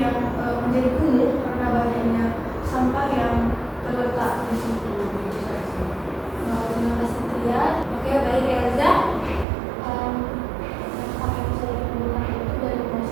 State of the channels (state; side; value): drops out; left; at 9.5 s